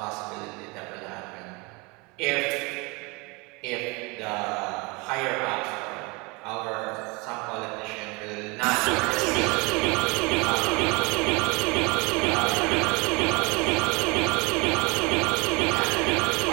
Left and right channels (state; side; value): quieter; left; 27.4 dB